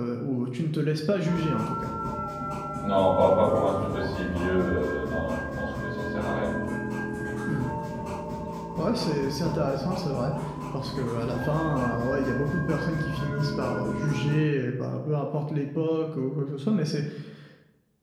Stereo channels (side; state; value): both; identical; correlation 1.00